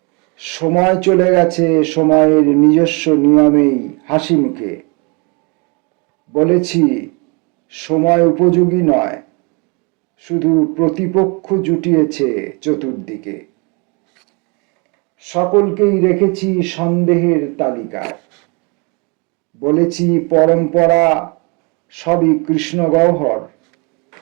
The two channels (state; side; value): quieter; left; 31.5 dB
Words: সময় চলে গেছে সময়ের নিজস্ব নিয়মেই হাসি মুখে। বলেছি সময় উপযোগী নয়, শুধু প্রতিপক্ষ জুটিয়েছে চতুর্দিকে। সকলকেই রেখেছি সন্দেহের তালিকায়। বলেছি পরম্পরা সবই কৃষ্ণ গহ্বর।